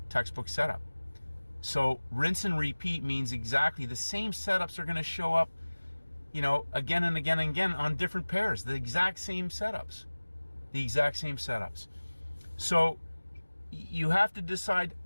textbook setup. So rinse and repeat means exactly the same setups are going to show up, you know, again and again and again on different pairs. The exact same setups. The exact same setups. So you have to decide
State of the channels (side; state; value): both; inverted; correlation -1.00